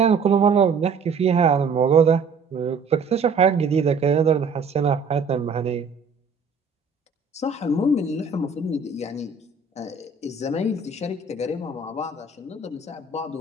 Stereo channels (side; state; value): left; quieter; 4.7 dB